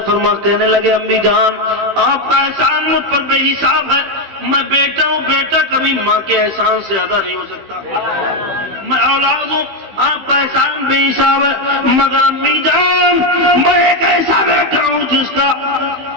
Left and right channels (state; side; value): late; left; 15 ms